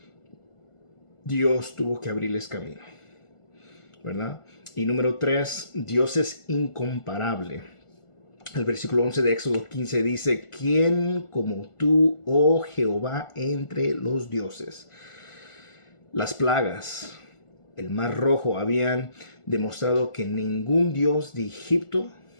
Dios tuvo que abrirles camino, ¿verdad? Y número 3, Dios es incomparable. El versículo 11 de Éxodo 15 dice, ¿quién como tú, oh Jehová, entre los dioses? Las plagas, el mar rojo habían demostrado que ningún dios de Egipto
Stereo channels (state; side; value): late; right; 1.4 ms